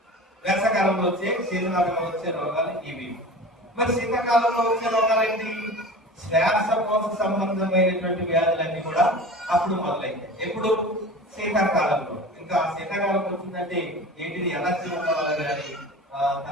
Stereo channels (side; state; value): both; normal; correlation 0.36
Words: వేసవకాలంలో వచ్చే, శీతకాలంలో వచ్చే రోగాలు ఇవి. మరి శీతాకాలంలో వచ్చే రోగాలు ఏంటి, శ్వాసకోశ సంబంధమైనటువంటి వ్యాధులన్నీ కూడా అప్పుడు మొదలైతాయి. ఎప్పుడు, శీతాకాలంలో. ఇంకా శీతాకాలం వచ్చిందంటే ఏంటిది, ఎలర్జీ ఉన్న వాళ్ళు కానీ,